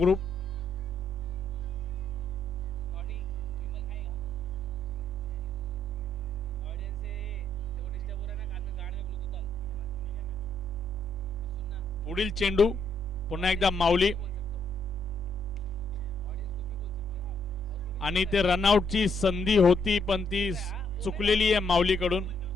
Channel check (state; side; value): normal; both; correlation 0.72